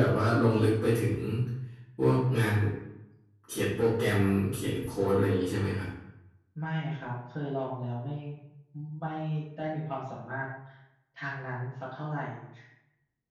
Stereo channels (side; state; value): both; identical; correlation 1.00